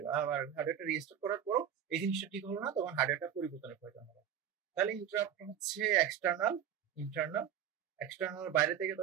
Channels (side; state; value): left; quieter; 9.3 dB